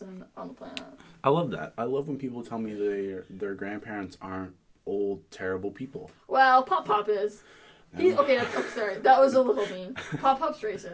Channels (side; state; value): both; identical; correlation 1.00